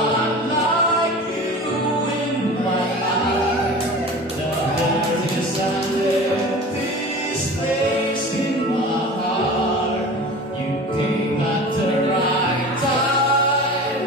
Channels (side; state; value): both; normal; correlation 0.36